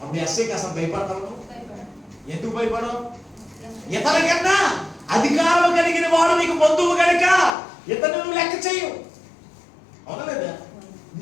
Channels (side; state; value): right; drops out; at 7.5 s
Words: అప్పుడు ఎస్ఐకి అసలు భయపడతావు? ఎందుకు భయపడవు? ఇతనికన్నా అధికారం కలిగిన వాడు నీకు బంధువు కనుక ఇతను నువ్వు లెక్క చేయు. అవునా లేదా?